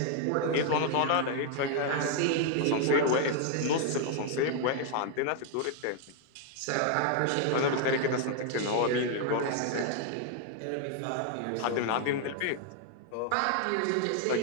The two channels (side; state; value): both; different; correlation 0.00